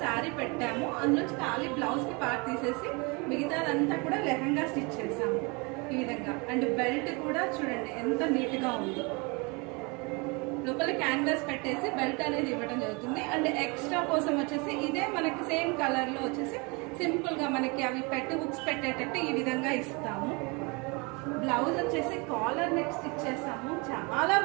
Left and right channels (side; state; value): left; quieter; 29.2 dB